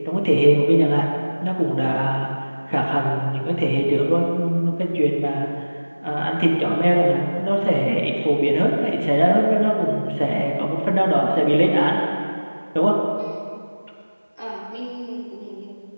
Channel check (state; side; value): inverted; both; correlation -1.00